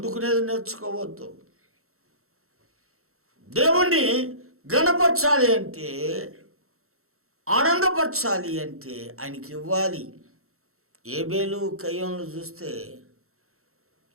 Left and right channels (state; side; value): late; left; 0.63 ms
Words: నేర్చుకోవద్దు. దేవుణ్ణి గణపరచాలి అంటే, ఆనందపరచాలి అంటే ఆయనకి ఇవ్వాలి. ఏబేలు కయ్యోన్లు చూస్తే